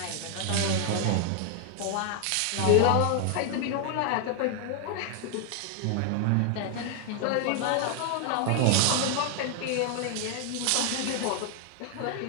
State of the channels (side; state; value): both; different; correlation 0.00